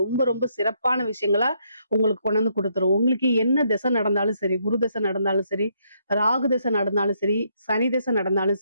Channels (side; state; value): both; inverted; correlation -0.74